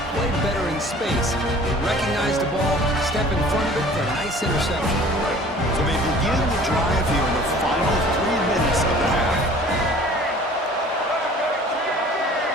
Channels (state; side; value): normal; both; correlation 0.48